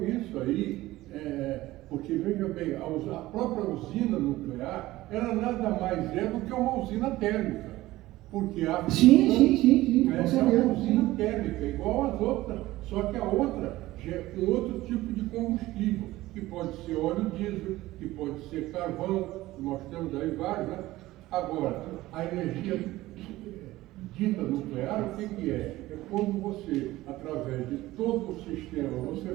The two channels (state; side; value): quieter; left; 17.2 dB